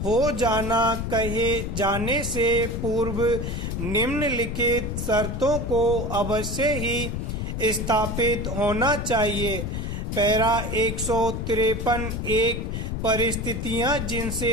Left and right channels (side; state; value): left; noise; rumble, 3 dB below the sound